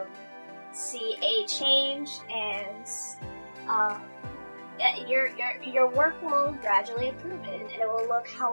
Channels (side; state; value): both; inverted; correlation -1.00